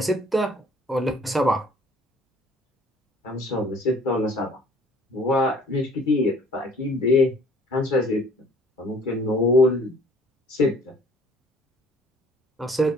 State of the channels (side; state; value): both; normal; correlation 0.55